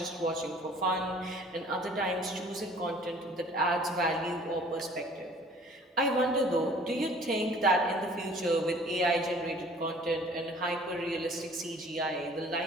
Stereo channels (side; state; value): both; normal; correlation 0.52